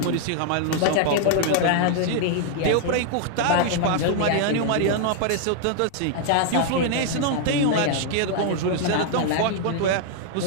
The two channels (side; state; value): both; different; correlation 0.00